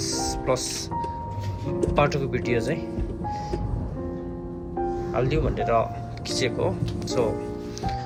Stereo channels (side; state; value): both; identical; correlation 1.00